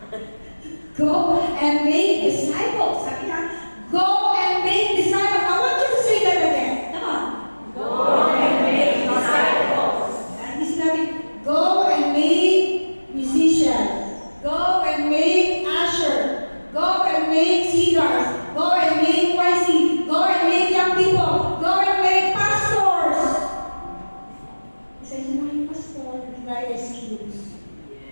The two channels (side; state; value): both; inverted; correlation -1.00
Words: Go and make disciples. Sabi na, go and make disciples. I want you to say that again. Come on. Go and make disciples. Hindi sinabi, go and make musicians. Go and make usher. Go and make singers. Go and make YC. Go and make young people. Go and make pastors. Isa yun na yung pastor, not excuse.